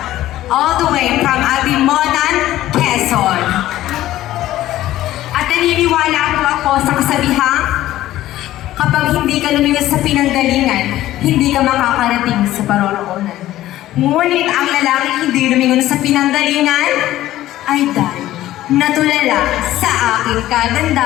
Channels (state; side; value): quieter; right; 14.5 dB